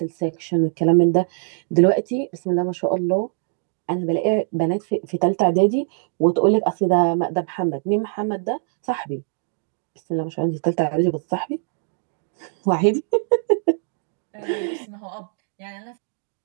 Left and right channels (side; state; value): left; silent; 64 dB below the other